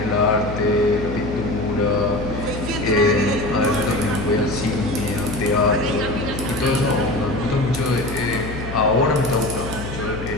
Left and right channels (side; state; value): left; noise; hum, 9 dB below the sound